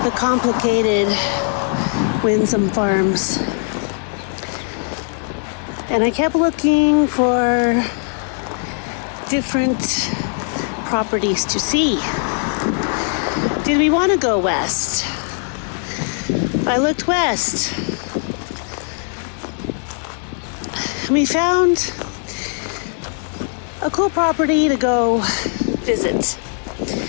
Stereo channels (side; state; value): right; silent; 56 dB below the other